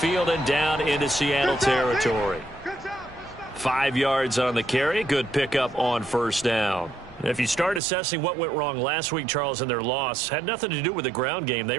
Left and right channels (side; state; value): left; drops out; at 7.8 s